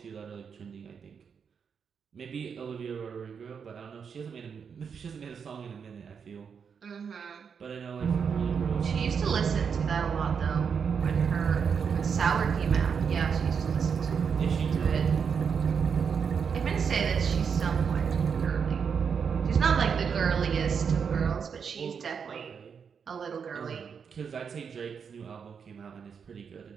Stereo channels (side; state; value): left; quieter; 6.6 dB